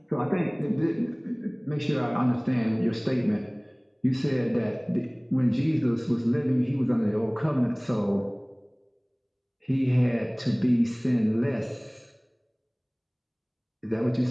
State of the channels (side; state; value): both; identical; correlation 1.00